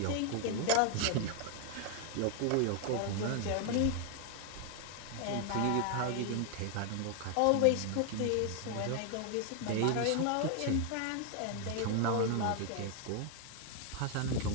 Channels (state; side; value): different; both; correlation 0.00